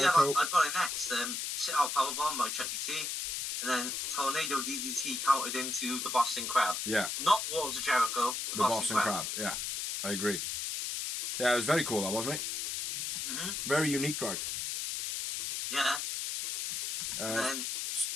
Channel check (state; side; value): noise; left; hiss, 2 dB below the sound